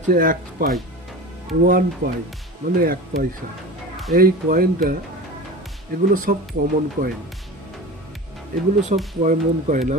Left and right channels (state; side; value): normal; both; correlation 0.32